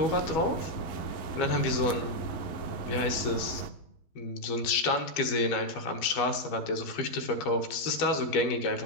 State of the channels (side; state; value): right; late; 12 ms